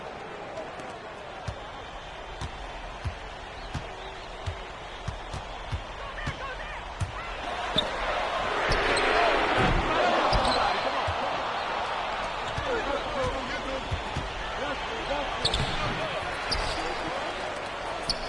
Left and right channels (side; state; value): both; identical; correlation 1.00